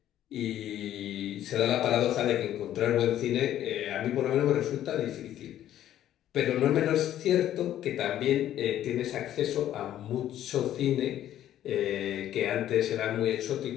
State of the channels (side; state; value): right; quieter; 12.0 dB